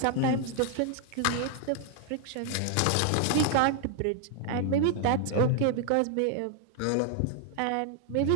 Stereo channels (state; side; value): different; both; correlation 0.00